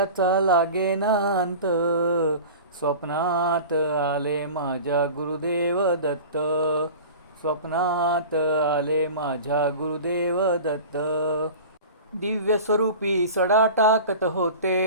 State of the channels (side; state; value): both; inverted; correlation -0.36